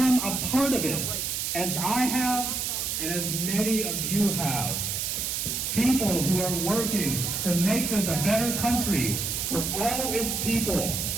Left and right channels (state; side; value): noise; right; hiss, 1 dB below the sound